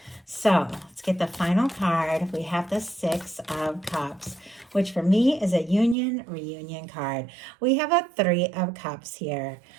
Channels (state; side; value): drops out; left; at 6.0 s